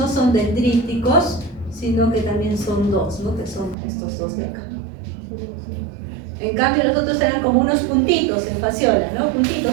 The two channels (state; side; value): drops out; left; at 3.8 s